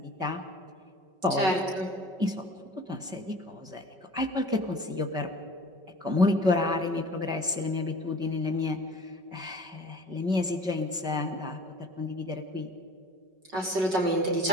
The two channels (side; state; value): left; late; 5.3 ms